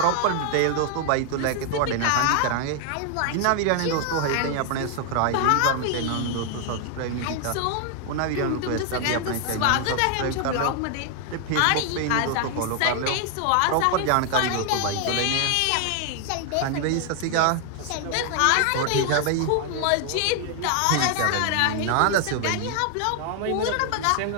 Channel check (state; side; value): different; both; correlation 0.00